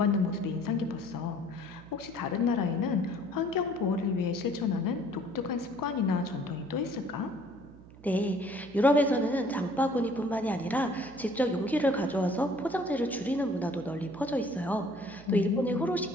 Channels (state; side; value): noise; right; hum, 21 dB below the sound